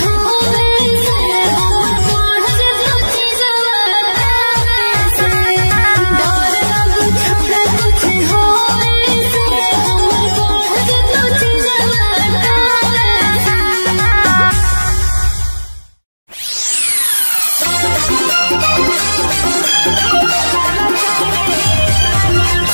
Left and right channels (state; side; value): inverted; both; correlation -1.00